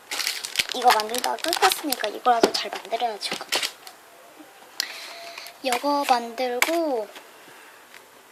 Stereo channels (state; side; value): identical; both; correlation 1.00